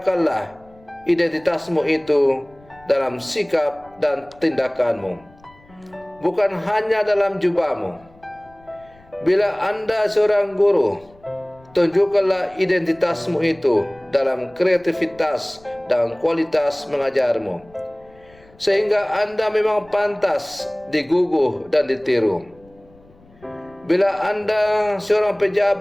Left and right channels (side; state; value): left; noise; rumble, 28 dB below the sound